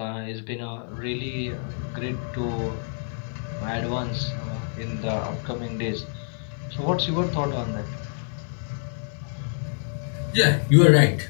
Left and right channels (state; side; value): silent; right; digital silence